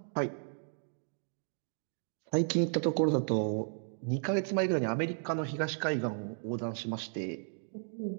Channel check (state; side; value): silent; left; digital silence